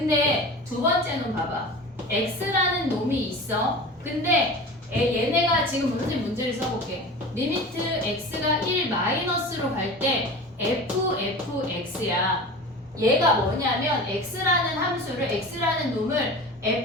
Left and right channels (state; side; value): normal; both; correlation 0.34